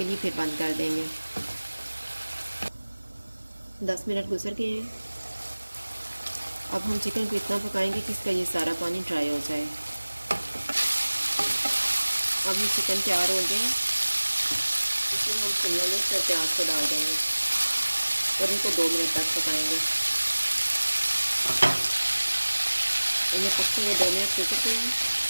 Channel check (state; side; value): inverted; both; correlation -1.00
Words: लिए फिर बंद कर देंगे। 10 मिनट गुजर गए हैं। अब हम चिकन को इतना पकाएंगे कि इसका ये सारा पानी ड्राई हो जाए। अब ये चिकन तैयार हो गया। इसमें हम शिमला मिर्च और प्याज को डाल देंगे और इनको 2 मिनट तक पकाएंगे। इन्हें पकते हुए 2 मिनट गुजर गए हैं